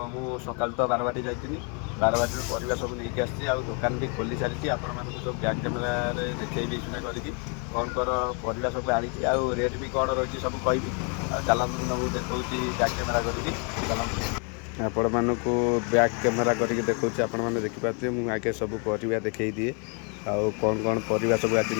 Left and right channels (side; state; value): right; quieter; 36.8 dB